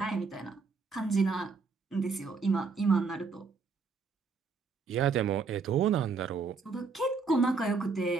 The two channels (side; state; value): left; quieter; 4.7 dB